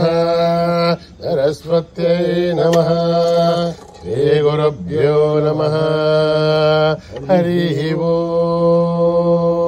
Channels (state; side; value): identical; both; correlation 1.00